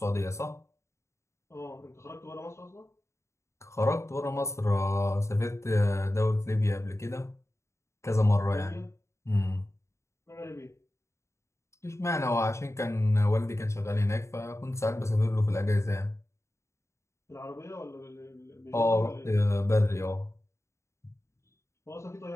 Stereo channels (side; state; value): right; late; 0.14 ms